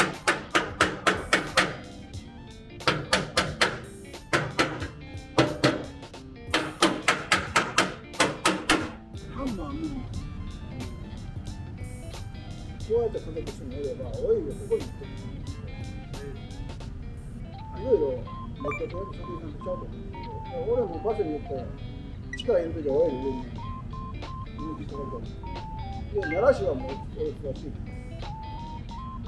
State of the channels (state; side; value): identical; both; correlation 1.00